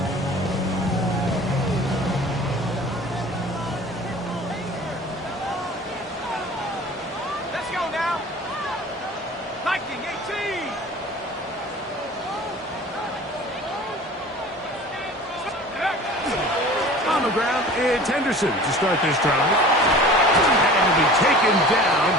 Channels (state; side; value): normal; both; correlation 0.42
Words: It's Henderson to start this drive. And he'll be taken down